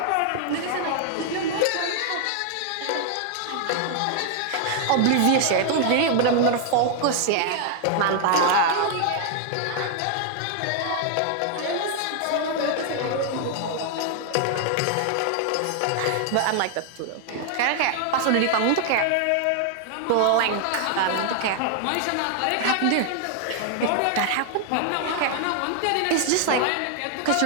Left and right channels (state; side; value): different; both; correlation 0.00